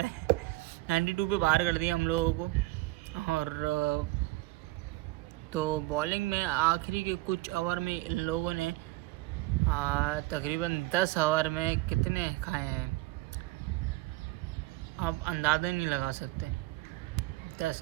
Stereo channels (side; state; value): left; quieter; 19.9 dB